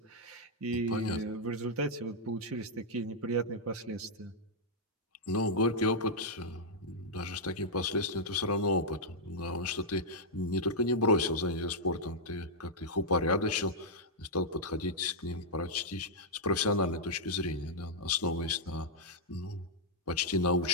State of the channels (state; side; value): normal; both; correlation -0.06